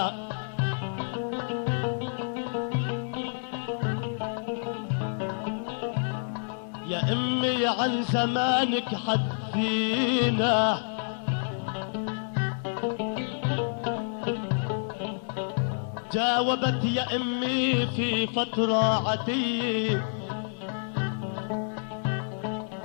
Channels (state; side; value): silent; right; 59 dB below the other